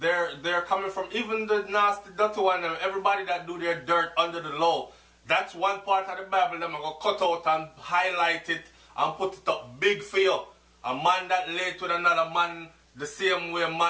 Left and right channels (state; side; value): identical; both; correlation 1.00